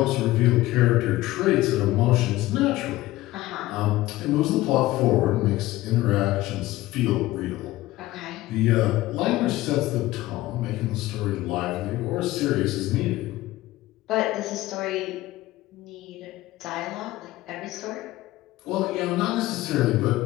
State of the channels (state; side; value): quieter; right; 17.1 dB